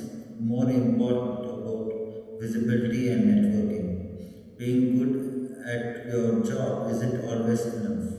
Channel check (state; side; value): identical; both; correlation 1.00